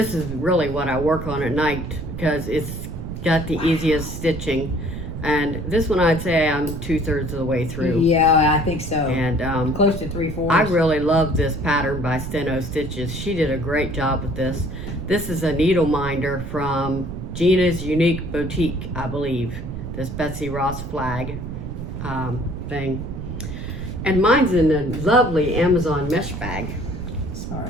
is really what I work on at night because it's got the easiest stitching. And this one, I'd say I'm 2/3 of the way through. Yeah, I think so. And close to 3/4. I really love this pattern by Steno Stitches. She did a great job with this. This is a needle minder from Gina's Unique Boutique, I believe. This Betsy Ross flag thing. And mine's in a lovely Amazon mesh bag.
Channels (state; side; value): noise; right; rumble, 7 dB below the sound